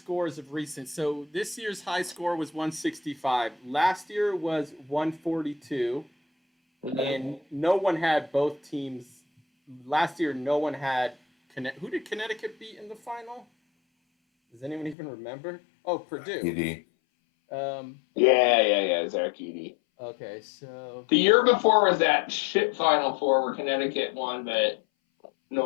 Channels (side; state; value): right; drops out; at 15.0 s